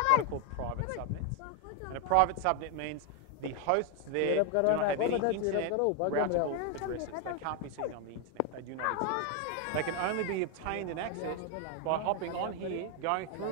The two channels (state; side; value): different; both; correlation 0.01